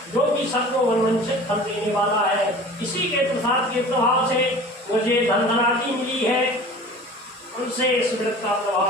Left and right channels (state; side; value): normal; both; correlation 0.41